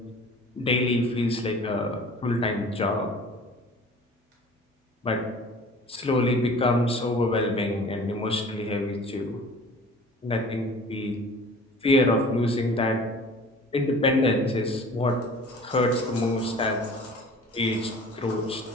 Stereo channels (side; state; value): both; normal; correlation 0.45